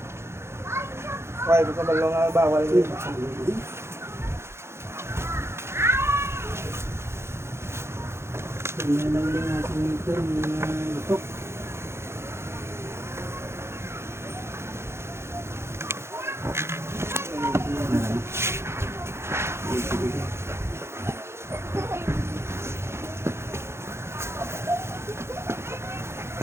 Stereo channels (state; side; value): late; left; 0.13 ms